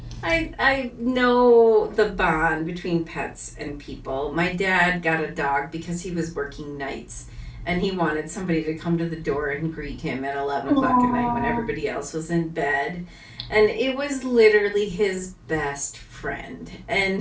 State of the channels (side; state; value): both; identical; correlation 1.00